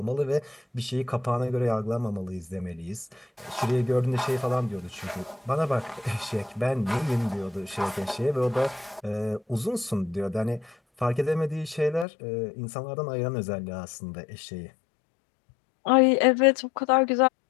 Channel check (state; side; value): drops out; right; at 12.1 s